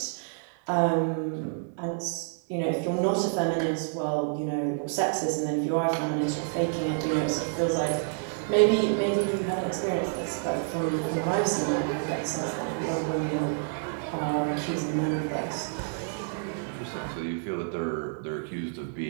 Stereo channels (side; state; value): left; silent; digital silence